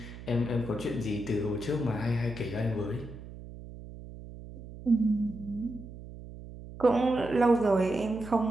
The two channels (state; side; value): noise; right; hum, 14 dB below the sound